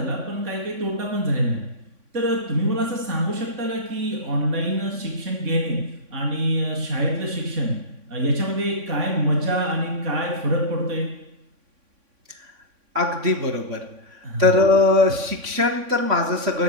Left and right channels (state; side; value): late; left; 3.6 ms